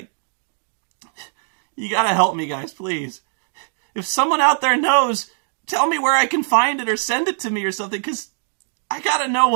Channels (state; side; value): silent; left; digital silence